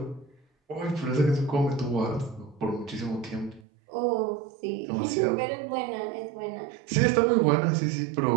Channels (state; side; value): drops out; left; at 3.6 s